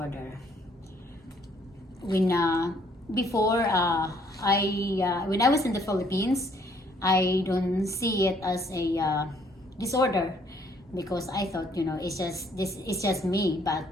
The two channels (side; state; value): both; normal; correlation 0.65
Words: When before when I was in the Philippines, I don't see it as a disorder because I thought it's just me, but